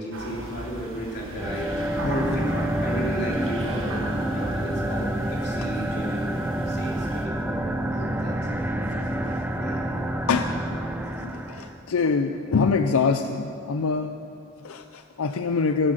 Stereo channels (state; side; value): normal; both; correlation 0.47